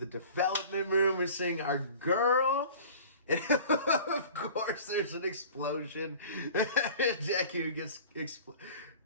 development room. We're seeing our girl. And of course, there's an explosion. Deku gets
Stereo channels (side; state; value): both; inverted; correlation -0.43